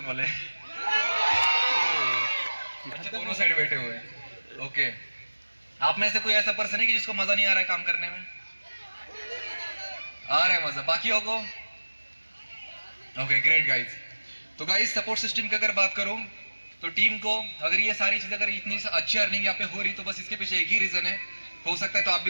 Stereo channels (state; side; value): inverted; both; correlation -1.00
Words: वाले? अच्छा, दोनों साइड बैठे हुए हैं। ओके, आप में से कोई ऐसा पर्सन है कि जिसको मजा नहीं आ रहा है काम करने में? आ रहा है मजा बाकियों को? Okay, great guys. तो गाइस सपोर्ट सिस्टम की अगर बात करूं तो टीम को अगर ये सारी चीजें, अगर इतनी अच्छी अर्निंग यहाँ पे हो रही तो बस इसके पीछे एक ही रीजन है, हो सकता है तो आप